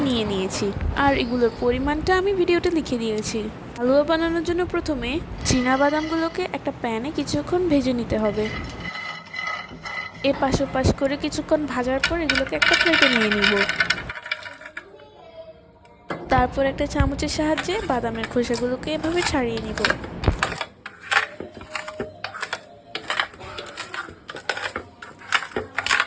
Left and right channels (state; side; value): identical; both; correlation 1.00